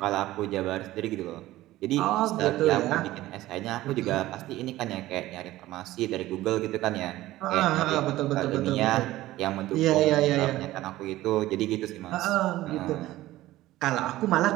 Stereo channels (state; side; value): quieter; left; 16.2 dB